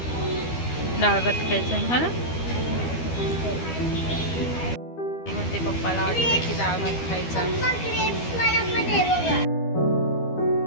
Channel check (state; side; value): late; right; 12 ms